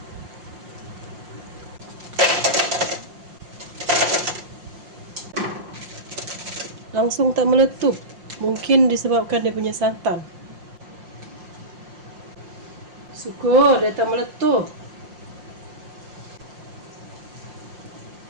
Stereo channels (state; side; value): late; left; 5.7 ms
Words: Langsung tak meletup. Mungkin disebabkan dia punya santan. Syukur dia tak meletup.